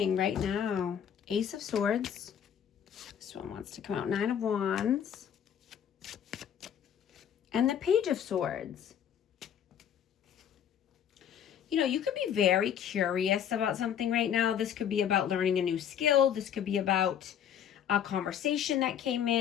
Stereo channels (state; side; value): quieter; right; 8.9 dB